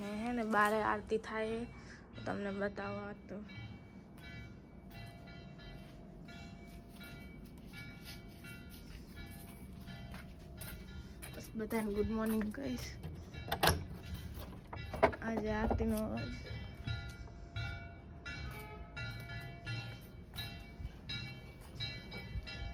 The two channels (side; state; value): both; identical; correlation 1.00